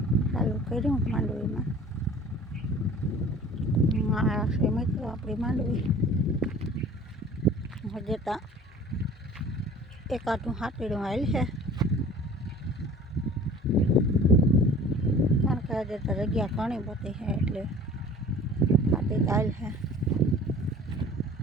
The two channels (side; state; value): both; normal; correlation 0.46